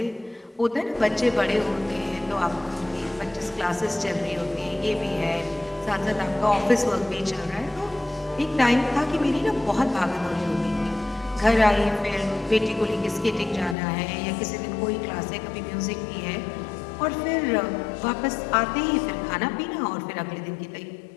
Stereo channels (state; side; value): drops out; right; at 13.8 s